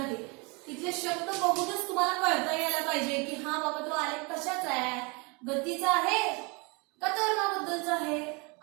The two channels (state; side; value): quieter; left; 29.7 dB